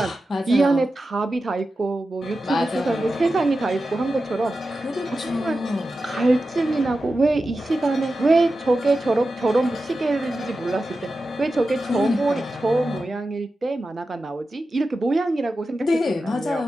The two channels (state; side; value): normal; both; correlation 0.92